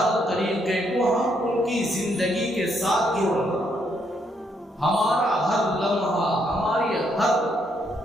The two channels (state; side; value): normal; both; correlation 0.74